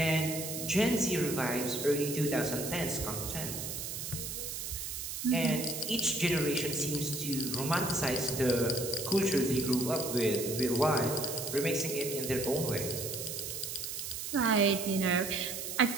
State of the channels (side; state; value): right; noise; hiss, 5 dB below the sound